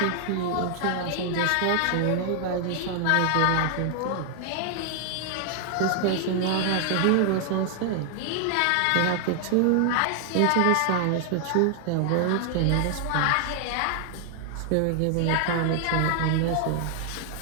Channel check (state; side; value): different; both; correlation 0.00